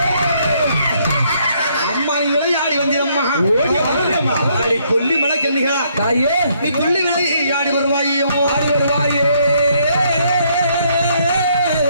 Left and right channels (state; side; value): inverted; both; correlation -0.70